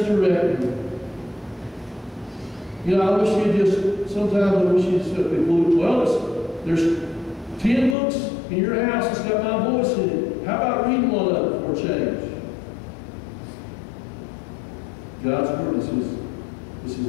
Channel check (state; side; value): drops out; right; at 8.0 s